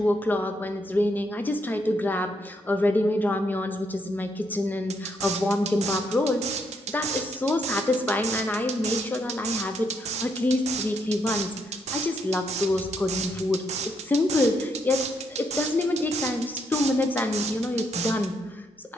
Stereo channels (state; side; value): normal; both; correlation 0.75